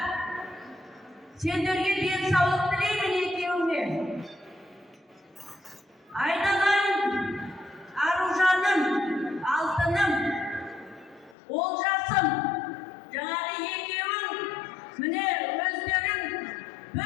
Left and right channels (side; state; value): right; drops out; at 11.4 s